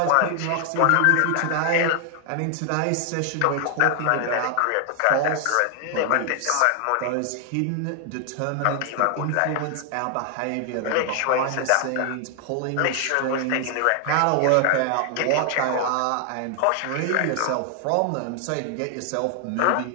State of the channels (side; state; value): both; different; correlation 0.00